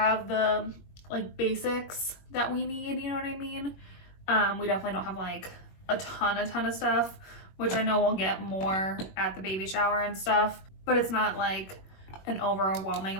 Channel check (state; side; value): late; right; 21 ms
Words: the like basics that we need, you know what I mean? We definitely don't have like a ton of stuff, which I know we'll get more at the baby shower and stuff, but it's not like an overwhelming